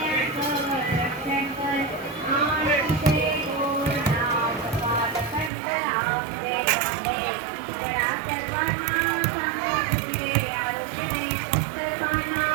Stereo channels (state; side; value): drops out; left; at 5.5 s